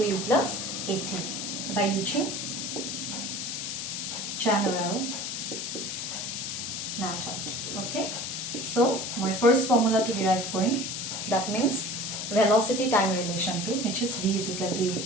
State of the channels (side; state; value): left; noise; hiss, 4 dB below the sound